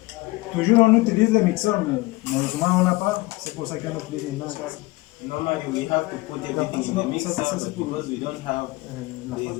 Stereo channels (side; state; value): right; quieter; 21.6 dB